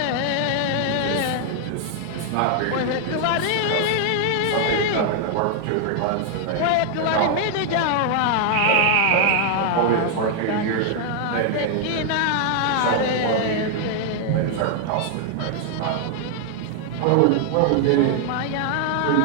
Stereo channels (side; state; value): both; different; correlation 0.00